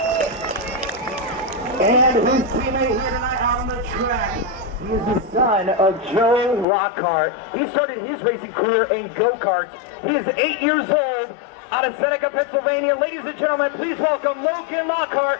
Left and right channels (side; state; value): right; drops out; at 6.7 s